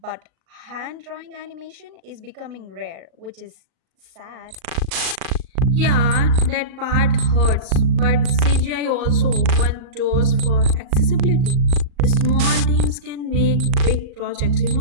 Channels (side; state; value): left; late; 38 ms